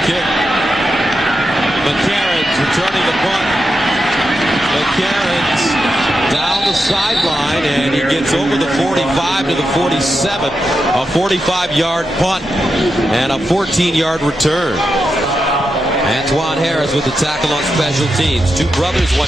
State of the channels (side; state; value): both; normal; correlation 0.87